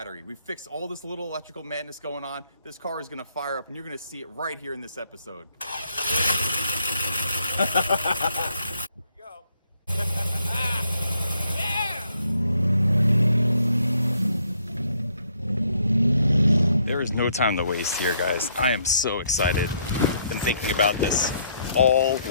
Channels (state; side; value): inverted; both; correlation -0.70